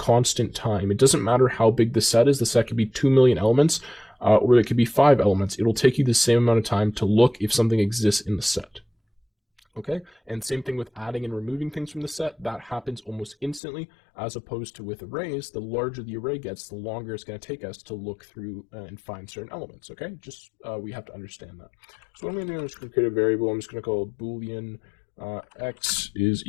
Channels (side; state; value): right; drops out; at 13.6 s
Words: time. It doesn't matter how big the set is. The set could be 2 million elements, or it could be 5 elements. It'll take you the same amount of time to look if something exists in the set. Okay, and same thing with adding and removing things from the set. That happens almost instantly, as opposed to with arrays. The larger the array gets, the longer it's going to take us to look through and find certain elements. Okay, just we have to understand that. So what I'm going to do is going to create a variable. I'm just going to call it boolean x is